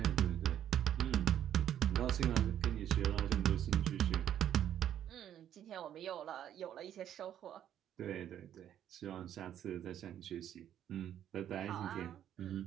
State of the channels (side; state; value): left; quieter; 10.5 dB